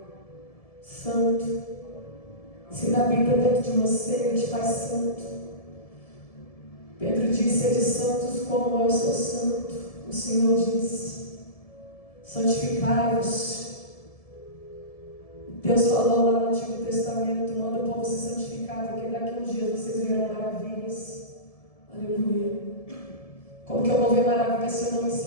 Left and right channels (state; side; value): late; right; 1.7 ms